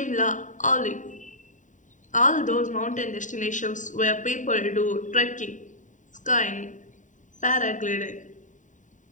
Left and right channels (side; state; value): right; late; 0.36 ms